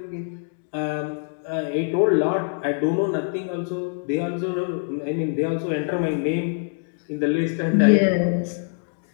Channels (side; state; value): right; silent; digital silence